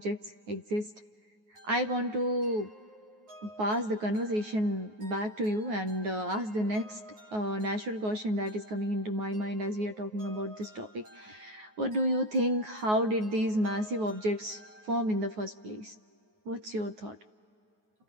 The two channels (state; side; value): late; left; 9.4 ms